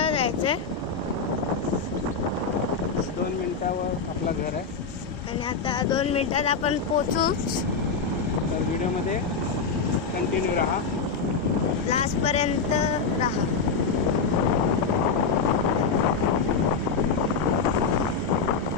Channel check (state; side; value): quieter; right; 4.9 dB